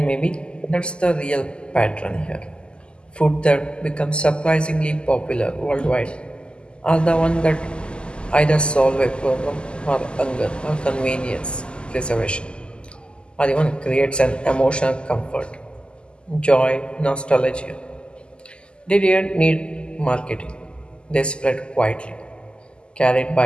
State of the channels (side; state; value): right; late; 0.050 ms